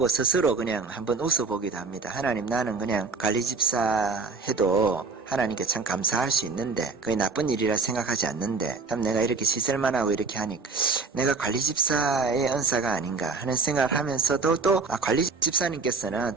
스스로 그냥 한번 웃어보기도 합니다. 하나님, 나는 그냥 관리집사 해도 하나님께 참 감사할 수 있는데, 그게 나쁜 일이라 생각하지 않는데, 참 내가 이렇게 시설만 하고 이렇게 하니까 내가 관리집사의 은사가 아닌가 하는 생각을 하면서도, 또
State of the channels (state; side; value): quieter; left; 4.3 dB